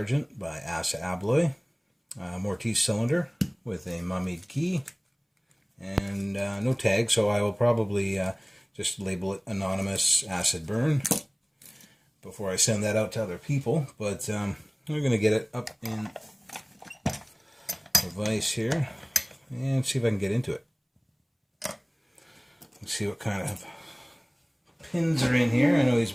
by Asa Abloy, Mortise cylinder with a mummied key, and no tag, so I will probably just label it Anonymous Acid Burn before I send that out to other people. But we're going to get it up in the vise here and see if I can get into it. Let's see what kind of pins are in here. I know he's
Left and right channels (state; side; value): identical; both; correlation 1.00